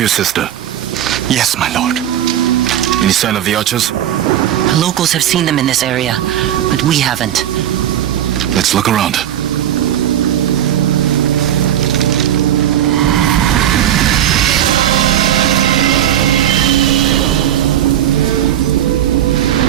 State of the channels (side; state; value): left; quieter; 11.2 dB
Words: your sister. Yes, my lord. Any sign of the archers? Locals have seen them in this area, but we haven't. Let's look around.